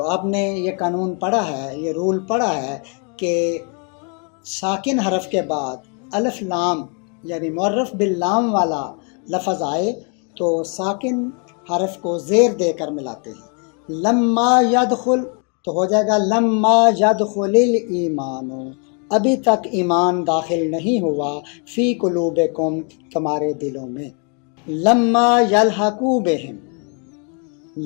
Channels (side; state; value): right; quieter; 38.3 dB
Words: آپ نے یہ قانون پڑھا ہے، یہ رول پڑھا ہے کہ ساکن حرف کے بعد الف لام یعنی معرف باللام والا لفظ آئے تو ساکن حرف کو زیر دے کر ملاتے ہیں، لما یدخل تو ہو جائے گا لما یدخل الایمان، ابھی تک ایمان داخل نہیں ہوا، فی قلوبکم تمہارے دلوں میں، لما یلحقوا بہم،